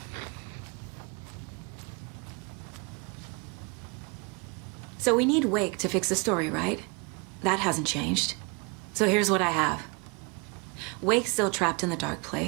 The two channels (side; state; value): left; quieter; 31.0 dB